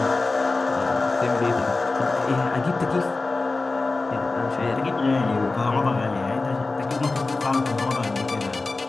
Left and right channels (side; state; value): right; quieter; 3.5 dB